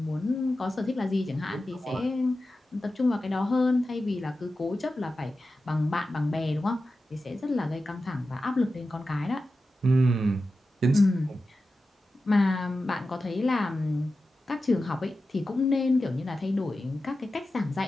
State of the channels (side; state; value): both; normal; correlation 0.93